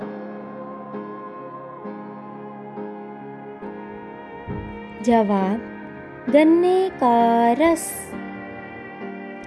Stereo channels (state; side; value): identical; both; correlation 1.00